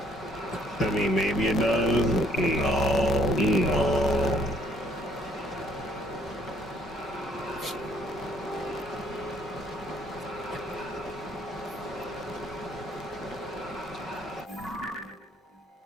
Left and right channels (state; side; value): normal; both; correlation 0.64